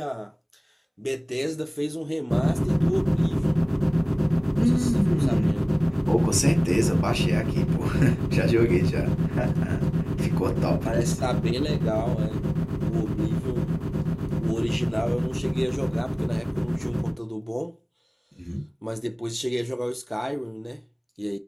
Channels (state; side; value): identical; both; correlation 1.00